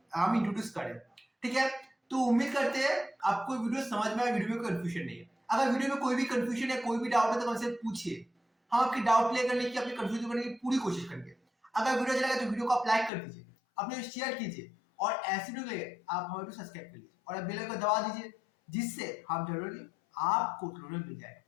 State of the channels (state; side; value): drops out; right; at 13.1 s